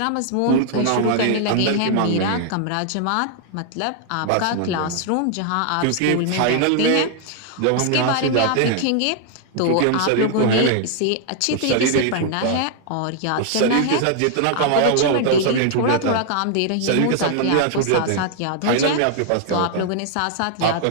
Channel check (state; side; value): different; both; correlation 0.00